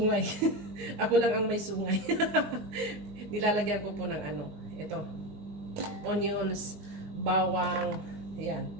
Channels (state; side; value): late; left; 19 ms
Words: Ako lang ang may sungay. Nilalagyan ko po ng ano, ito, onions, bawang, ayan.